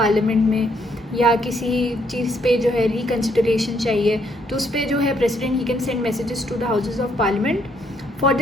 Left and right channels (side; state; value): both; normal; correlation 0.71